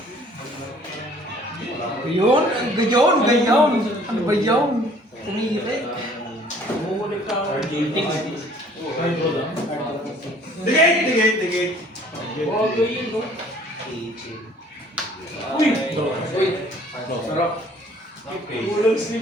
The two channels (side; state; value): both; normal; correlation 0.55